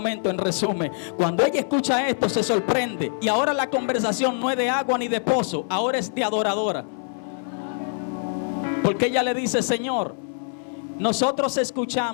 En resumen, cuando ella escucha esto se sorprende. Y ahora la conversación no es de agua ni de pozo, ahora es de adoradora. Porque ella le dice: Señor, nosotros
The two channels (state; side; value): silent; right; 62 dB below the other